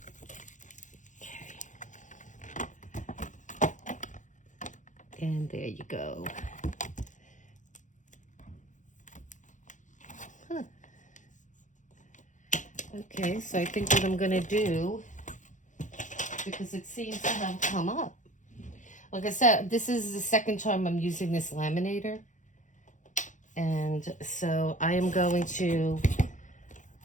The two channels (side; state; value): right; late; 0.36 ms